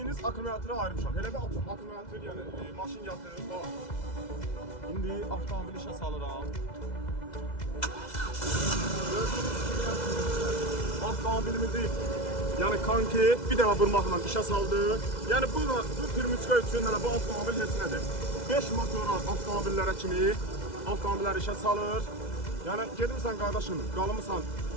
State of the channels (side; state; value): right; late; 2.0 ms